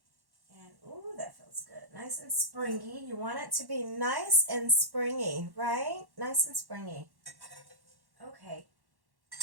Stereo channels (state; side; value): late; left; 1.1 ms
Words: And, ooh, that feels good. Nice and springy. You want it to be nice and springy, right? Nice and springy. Okay.